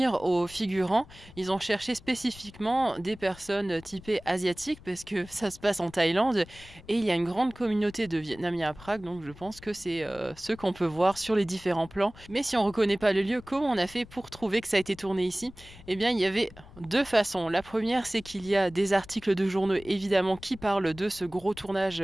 aux figurants, ils ont cherché spécifiquement des personnes typées asiatiques, parce que ça se passe en Thaïlande. Et il y a une grande communauté de Vietnamiens à Prague, donc je pense que c'est ceux qu'on peut voir sur les différents plans. Mais si on ne reconnaît pas le lieu, comment on a fait pour trouver que ça a été tourné ici? Eh bien, il y avait deux façons. La première, c'est qu'il y a des articles de journaux évidemment qui parlent de ce gros tournage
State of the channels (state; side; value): noise; left; rumble, 20 dB below the sound